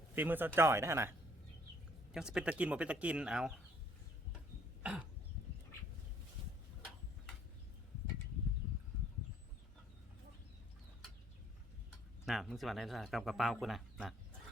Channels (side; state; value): both; normal; correlation 0.62